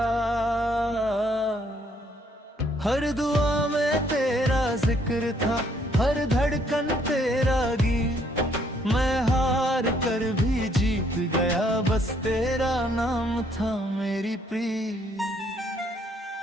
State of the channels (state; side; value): normal; both; correlation 0.67